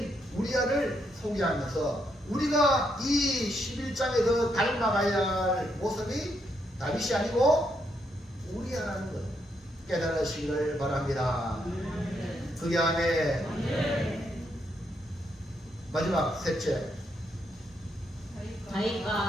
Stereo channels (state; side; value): normal; both; correlation 0.78